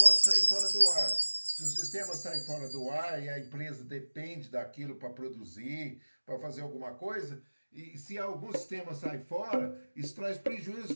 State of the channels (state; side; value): inverted; both; correlation -1.00